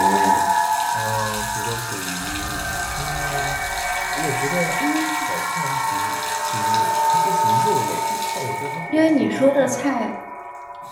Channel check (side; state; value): both; identical; correlation 1.00